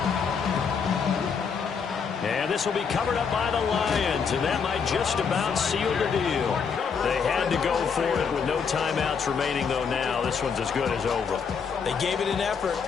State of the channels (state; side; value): quieter; right; 6.1 dB